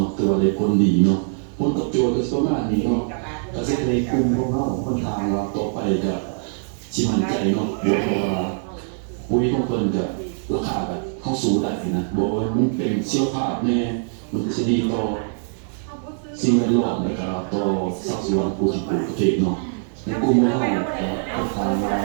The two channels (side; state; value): left; silent; 62 dB below the other